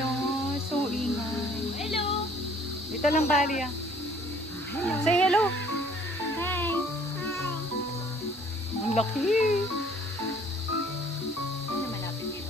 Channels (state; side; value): normal; both; correlation 0.57